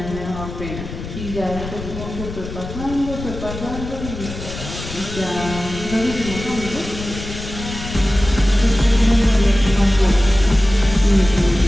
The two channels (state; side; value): noise; left; rumble, 10 dB below the sound